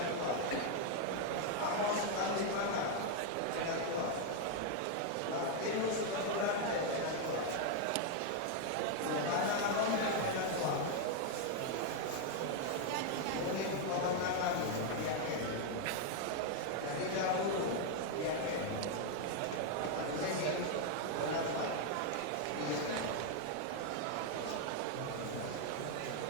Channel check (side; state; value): both; different; correlation 0.01